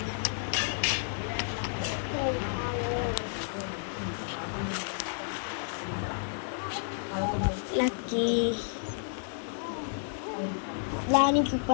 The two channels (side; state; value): right; silent; digital silence